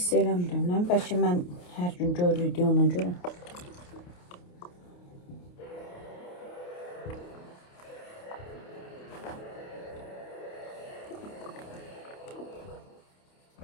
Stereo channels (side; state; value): right; late; 28 ms